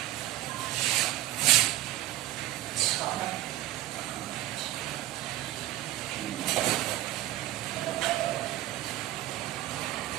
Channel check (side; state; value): left; quieter; 15.1 dB